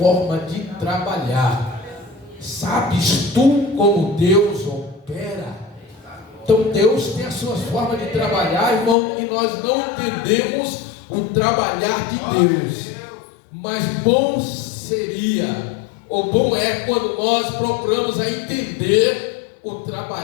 de trabalhar. Sabes tu como Deus opera? Então Deus tem as suas formas de trabalhar, irmão, e nós não entendemos o trabalhar de Deus. Mas bom seria, ou bom é quando nós procuramos a entender o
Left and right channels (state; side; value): drops out; right; at 9.0 s